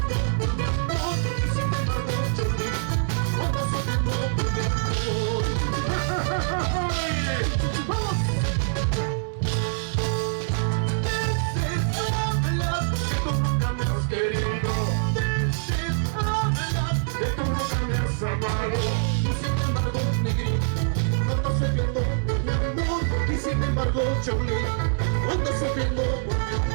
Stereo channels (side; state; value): left; silent; 62 dB below the other